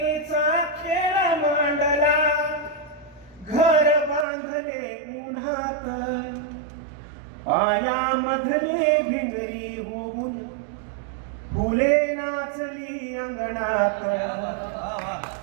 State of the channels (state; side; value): drops out; left; at 4.2 s